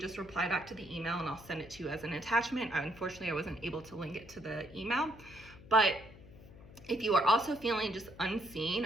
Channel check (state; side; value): noise; left; hum, 19 dB below the sound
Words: reply back to the email and I'll send it to you as an attachment. Unfortunately, I wasn't able to link it to the email, but if you are also feeling just